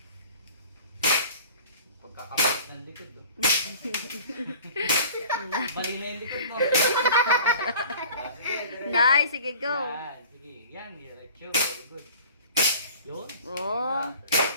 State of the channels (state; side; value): inverted; both; correlation -0.45